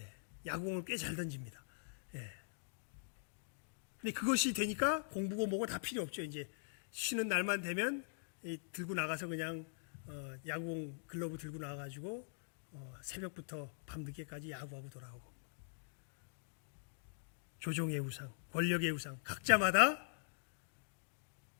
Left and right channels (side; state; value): right; silent; digital silence